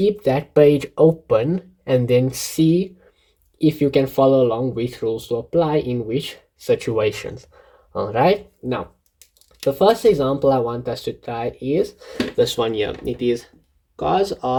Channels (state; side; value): identical; both; correlation 1.00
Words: that page open and then see if you can follow along which rules to apply in which situations. All right, now the first example I want us to try is this one here. It is cos